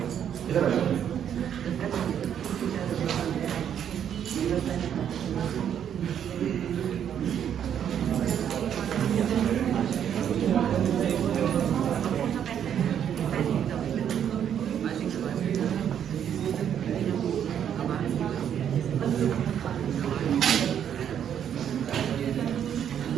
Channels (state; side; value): quieter; left; 9.1 dB